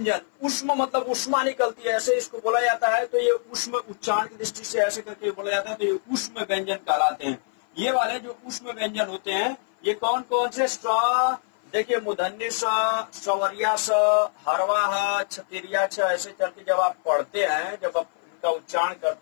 उष्म मतलब उष्मा निकलती है, ऐसे इसको बोला जाता है। तो ये उष्म उच्चारण की दृष्टि से ऐसे करके बोला जाता है, तो ये उष्म व्यंजन कहलाते हैं। ये वाले जो उष्म व्यंजन होते हैं ये कौन कौन से, स देखिए मूर्धन्य स, सवरिया स, हरवा ह, छतिरिया छ, ऐसे करके जब आप पढ़ते हैं, जब आप उनका उच्चारण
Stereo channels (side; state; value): right; silent; 58 dB below the other